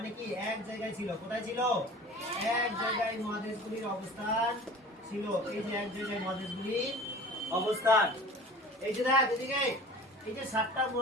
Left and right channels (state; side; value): normal; both; correlation 0.41